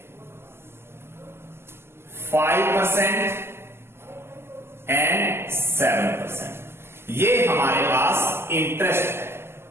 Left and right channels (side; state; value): left; late; 0.12 ms